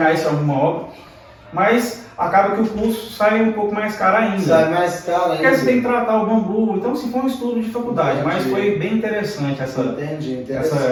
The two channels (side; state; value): both; identical; correlation 1.00